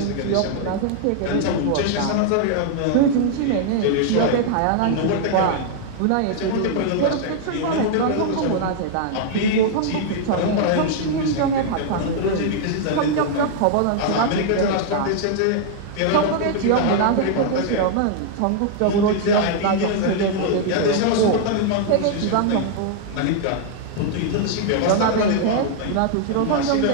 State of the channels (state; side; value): different; both; correlation -0.01